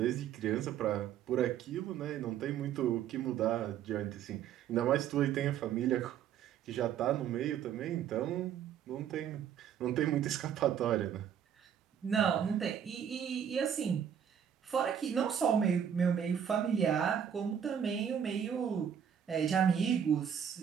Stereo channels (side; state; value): left; quieter; 8.8 dB